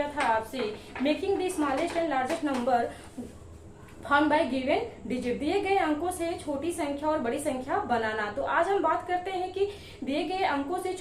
था आपसे making the smallest and largest number found by given digit, दिए गए अंकों से छोटी संख्या और बड़ी संख्या बनाना। तो आज हम बात करते हैं कि दिए गए अंकों से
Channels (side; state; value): both; identical; correlation 1.00